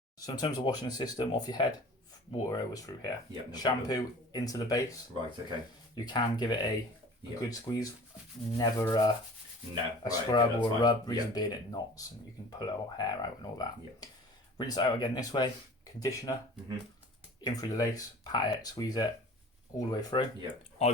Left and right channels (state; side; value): normal; both; correlation 0.44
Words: So in terms of washing the system off your head, water always through here. Yep, no Shampoo problem. into the base. Right, okay. You can give it a Yep. good squeeze. Never a scrub or a rub. Reason being it knots and you can pull our hair out and all that. Yep. Rinse it out again this way. Conditioner. In through the lace. Pat it. Squeeze it all the way through. Yep. I